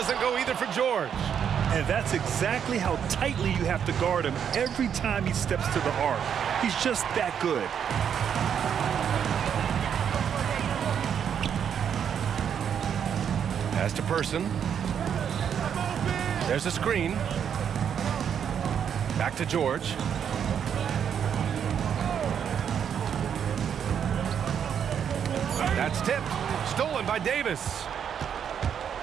go either for George. And that's exactly how tightly you have to guard him every time he steps to the arc. He's just that good. Pass to Person. There's a screen. Back to George. That's tipped. Stolen by Davis.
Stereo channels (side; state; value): left; quieter; 8.2 dB